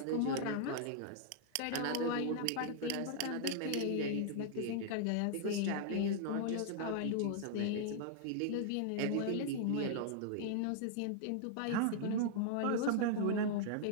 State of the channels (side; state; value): both; different; correlation -0.01